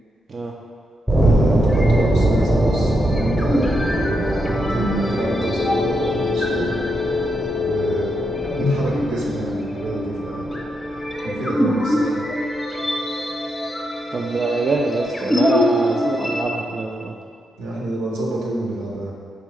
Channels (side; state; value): both; normal; correlation 0.83